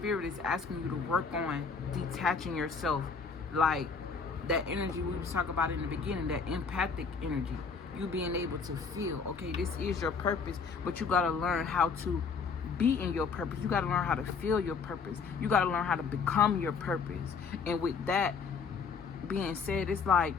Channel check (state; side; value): quieter; right; 5.3 dB